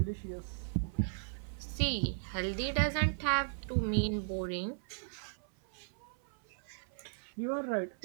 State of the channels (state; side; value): silent; left; 53 dB below the other